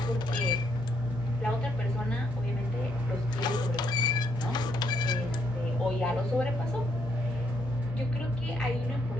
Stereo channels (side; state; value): both; normal; correlation 0.74